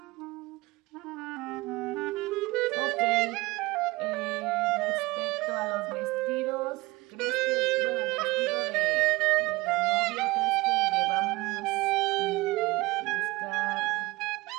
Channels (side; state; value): left; quieter; 21.5 dB